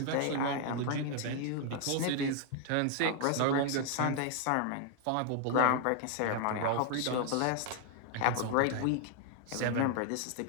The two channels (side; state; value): both; different; correlation 0.00